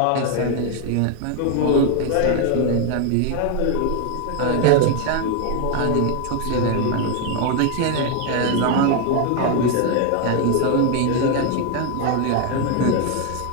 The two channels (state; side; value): different; both; correlation 0.00